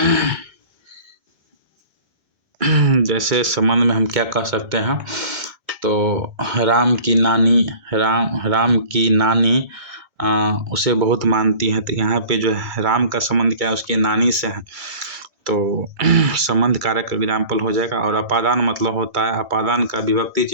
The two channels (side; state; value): left; late; 2.2 ms